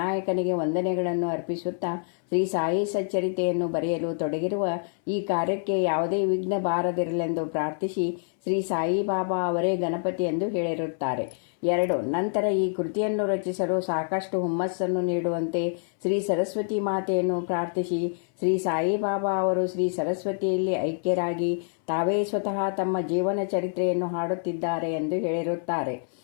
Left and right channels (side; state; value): right; silent; 60 dB below the other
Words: ವಂದನೆಗಳನ್ನು ಅರ್ಪಿಸುತ್ತಾ ಶ್ರೀ ಸಾಯಿ ಸಚ್ಚರಿತೆಯನ್ನು ಬರೆಯಲು ತೊಡಗಿರುವ ಈ ಕಾರ್ಯಕ್ಕೆ ಯಾವುದೇ ವಿಘ್ನ ಬಾರದಿರಲೆಂದು ಪ್ರಾರ್ಥಿಸಿ ಶ್ರೀ ಸಾಯಿಬಾಬಾ ಅವರೇ ಗಣಪತಿ ಎಂದು ಹೇಳಿರುತ್ತಾರೆ. 2. ನಂತರ ಈ ಕೃತಿಯನ್ನು ರಚಿಸಲು ಸಾಕಷ್ಟು ಹುಮ್ಮಸ್ಸನ್ನು ನೀಡುವಂತೆ ಶ್ರೀ ಸರಸ್ವತಿ ಮಾತೆಯನ್ನು ಪ್ರಾರ್ಥಿಸಿ ಶ್ರೀ ಸಾಯಿಬಾಬಾ ಅವರು ಶ್ರೀ ಸರಸ್ವತಿಯಲ್ಲಿ ಐಕ್ಯರಾಗಿ ತಾವೇ ಸ್ವತಃ ತಮ್ಮ ಜೀವನ ಚರಿತ್ರೆಯನ್ನು ಹಾಡುತ್ತಿದ್ದಾರೆ ಎಂದು ಹೇಳಿರುತ್ತಾರೆ.